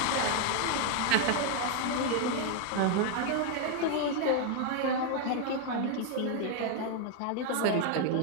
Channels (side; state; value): both; different; correlation 0.00